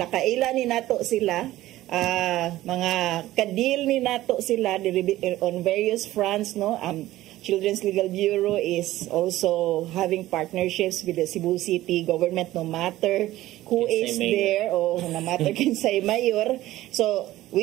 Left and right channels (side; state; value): left; quieter; 15.7 dB